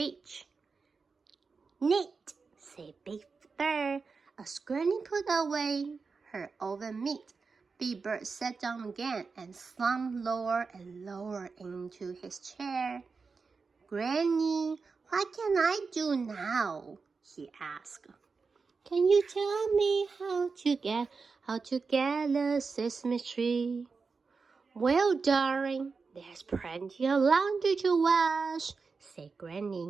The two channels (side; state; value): left; quieter; 4.7 dB